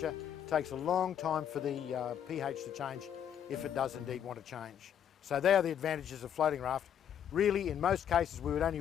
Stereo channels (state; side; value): quieter; right; 9.2 dB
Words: it takes a long time for the pH to change if it does indeed want to change. So they are the advantages of floating raft. Really, in most cases we would only